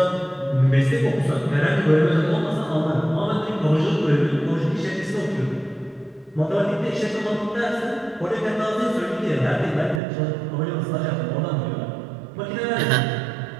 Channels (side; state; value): left; drops out; at 10.0 s